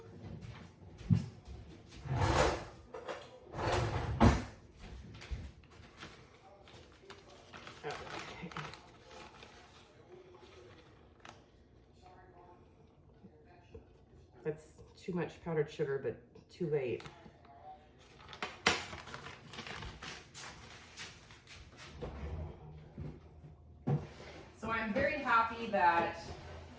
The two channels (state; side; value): identical; both; correlation 1.00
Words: That's too much powdered sugar, but too late. So I'm very happy that